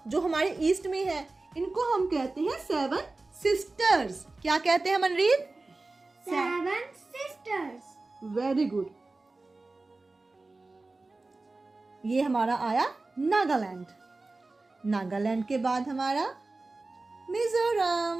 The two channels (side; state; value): left; quieter; 3.4 dB